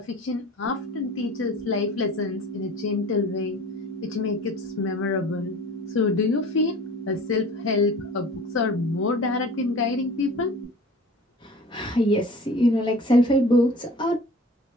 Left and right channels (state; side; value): normal; both; correlation 0.42